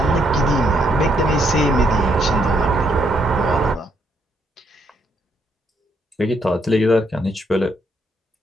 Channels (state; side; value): normal; both; correlation 0.74